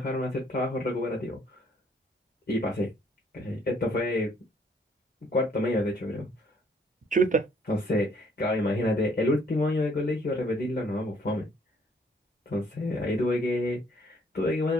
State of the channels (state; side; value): normal; both; correlation 0.64